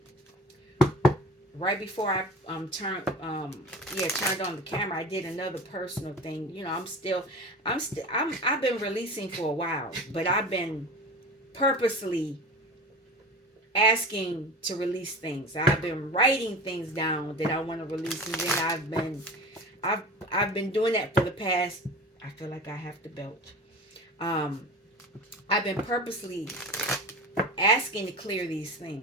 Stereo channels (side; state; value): both; normal; correlation 0.34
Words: right before I turned on the camera, I did another personal thing. I've been releasing for a while, but I've been purposely asking to release things. I've been writing things down that I want to release, and then I've been doing that for the past, I feel like I have to belch. I've been purposely asking to clear these